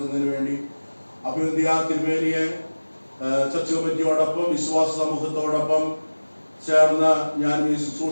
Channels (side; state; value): both; inverted; correlation -1.00